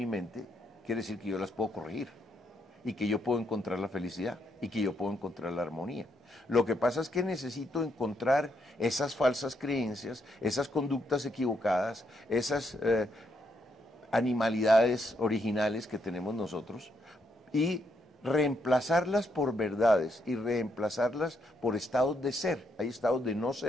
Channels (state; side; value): normal; both; correlation 0.77